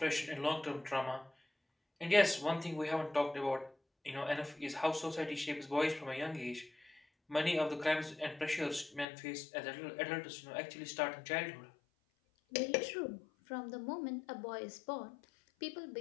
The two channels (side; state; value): right; drops out; at 9.1 s